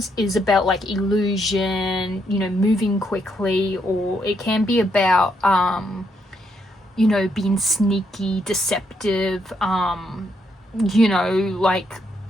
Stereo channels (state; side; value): normal; both; correlation 0.76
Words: is about like illusion, you know, moving quickly, or it can be about you know, being sneaky, deceptive, you know, like